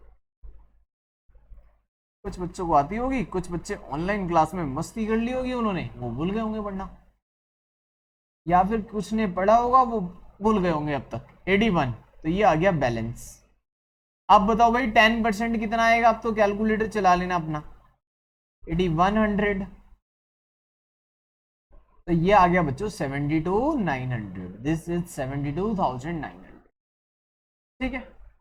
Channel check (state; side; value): identical; both; correlation 1.00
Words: कुछ बच्चों को आती होगी, कुछ बच्चे ऑनलाइन क्लास में मस्ती कर ली होगी उन्होंने, वो भूल गए होंगे पढ़ना, या फिर कुछ ने पढ़ा होगा वो भूल गए होंगे अब तक। 81, तो ये आ गया बैलेंस। अब बताओ भाई 10% कितना आएगा, अब तो कैलकुलेटर चला लेना अपना, 8100, तो ये आ गया बच्चों 72,900, दिस इज 72,900। ठीक है,